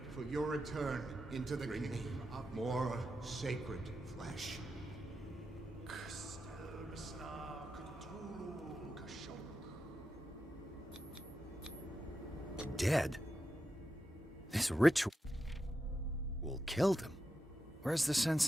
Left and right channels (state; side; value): normal; both; correlation 0.88